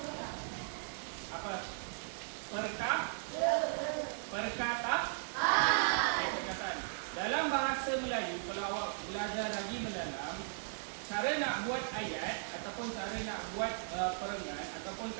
Apa? Perkataan. Dalam bahasa Melayu, kalau awak belajar lagi mendalam, cara nak buat ayat ataupun cara nak buat perenggan ataupun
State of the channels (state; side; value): silent; left; digital silence